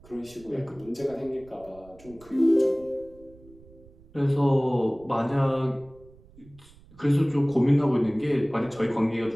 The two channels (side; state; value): right; noise; rumble, 24 dB below the sound